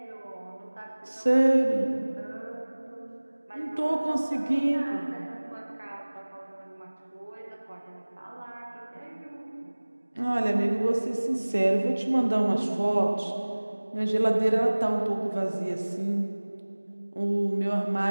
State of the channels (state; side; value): inverted; both; correlation -1.00